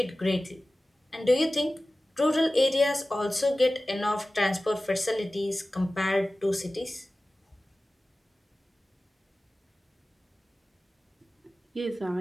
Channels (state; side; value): normal; both; correlation 0.96